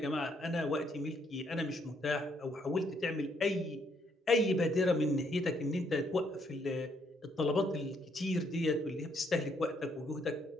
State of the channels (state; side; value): normal; both; correlation 0.71